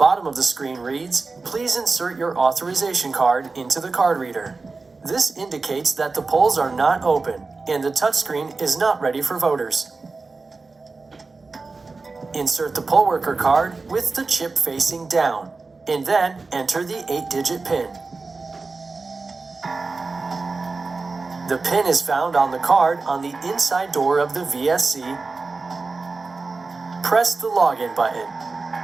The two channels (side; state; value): left; quieter; 3.9 dB